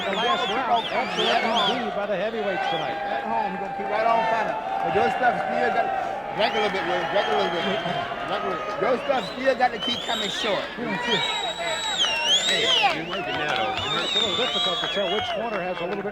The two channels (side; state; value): both; identical; correlation 1.00